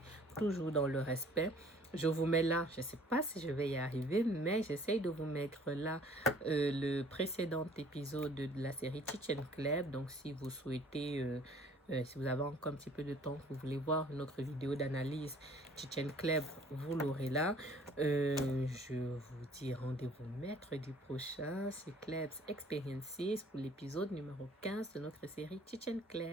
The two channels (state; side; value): normal; both; correlation 0.54